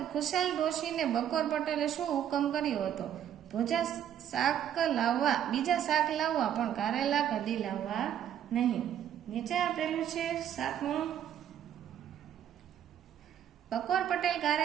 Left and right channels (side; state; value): left; quieter; 10.0 dB